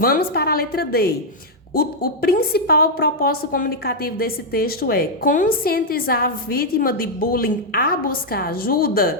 para a letra D. O principal propósito comunicativo desse texto é conscientizar a vítima de bullying a buscar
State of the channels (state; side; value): normal; both; correlation -0.03